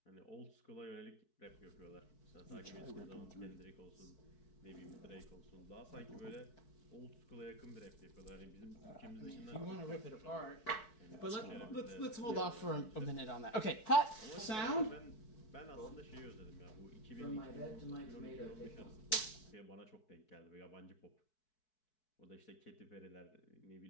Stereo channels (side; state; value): right; late; 4.6 ms